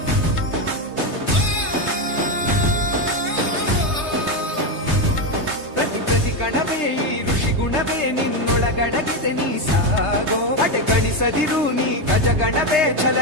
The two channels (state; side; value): late; left; 3.3 ms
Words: ಪ್ರತಿ ಕಣವೇ ಈ ಋಷಿ ಗುಣವೇ ನಿನ್ನೊಳಗಡಗಿದೆ, ನೀ ಸಾಗೋ. ಗಣಿಸದಿರು ನೀ ಗಜಗಣವೇ